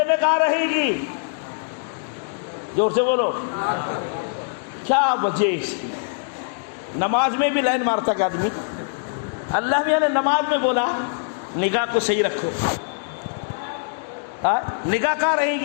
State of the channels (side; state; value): right; silent; digital silence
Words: میں کہاں رہے گی؟ زور سے بولو، کیا وجہ اس کی؟ نماز میں بھی لائن مارتا کہ آدمی، اللہ میاں نے نماز میں بولا نگاہ کو صحیح رکھو۔ نگاہ کہاں رہے